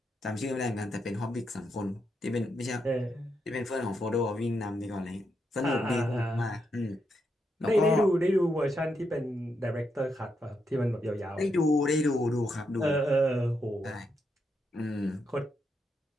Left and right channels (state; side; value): normal; both; correlation 0.81